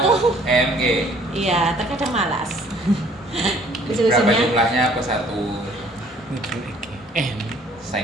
EMG. iya, terkadang malas. Berapa Solusinya jumlahnya plus 1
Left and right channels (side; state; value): both; normal; correlation 0.57